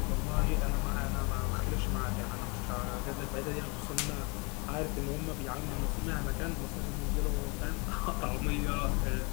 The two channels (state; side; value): quieter; right; 30.4 dB